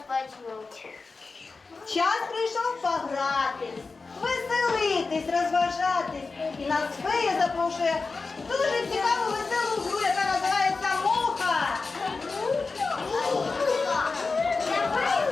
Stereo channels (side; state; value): right; quieter; 4.1 dB